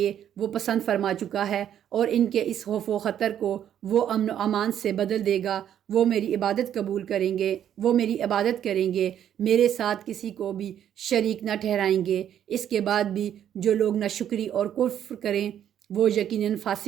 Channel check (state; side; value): quieter; left; 10.1 dB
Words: وہ پسند فرما چکا ہے، اور ان کے اس خوف و خطر کو وہ امن و امان سے بدل دے گا۔ وہ میری عبادت قبول کریں گے، وہ میری عبادت کریں گے، میرے ساتھ کسی کو بھی شریک نہ ٹھہرائیں گے۔ اس کے بعد بھی جو لوگ ناشکری اور کفر کریں وہ یقیناً